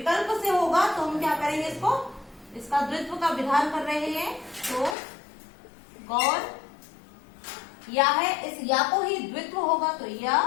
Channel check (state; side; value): drops out; right; at 5.0 s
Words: से होगा तो हम क्या करेंगे, इसको, इसका द्वित्व का विधान कर रहे हैं। तो गौर या है, इस या को ही द्वित्व होगा, तो